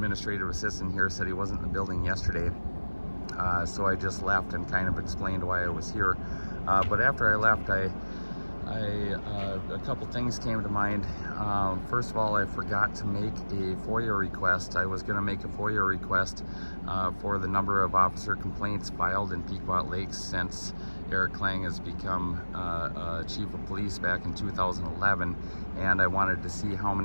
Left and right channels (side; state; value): both; inverted; correlation -1.00